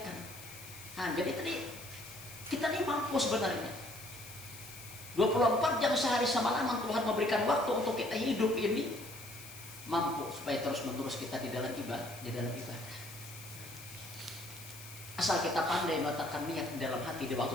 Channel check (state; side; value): noise; left; hiss, 15 dB below the sound